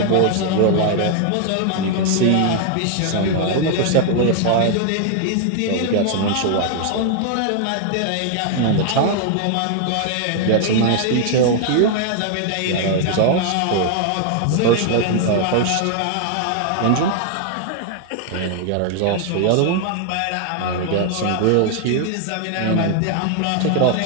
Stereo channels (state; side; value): different; both; correlation 0.00